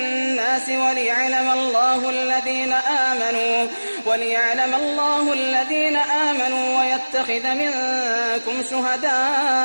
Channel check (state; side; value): inverted; both; correlation -1.00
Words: وليعلم الله الذين آمنوا ويتخذ منكم